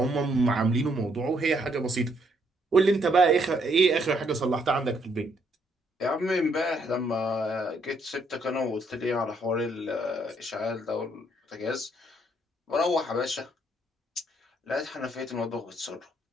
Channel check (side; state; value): both; normal; correlation 0.71